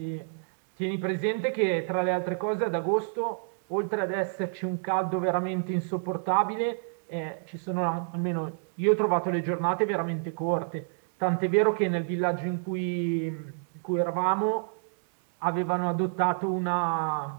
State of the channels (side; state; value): left; silent; digital silence